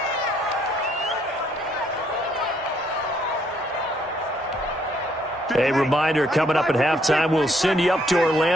A reminder, coming up at halftime, we'll send you up to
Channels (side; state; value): both; normal; correlation 0.69